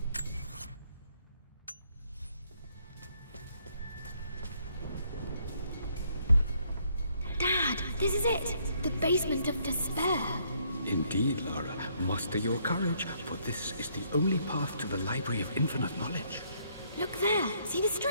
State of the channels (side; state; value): both; inverted; correlation -0.69